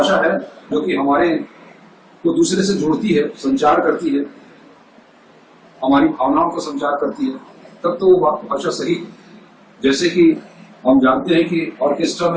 है जो कि हमारे को दूसरे से जोड़ती है, संचार करती है, हमारी भावनाओं को संचार करती है, तब तो वो भाषा सही। जैसे कि हम जानते हैं कि ऑर्केस्ट्रा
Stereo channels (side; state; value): both; identical; correlation 1.00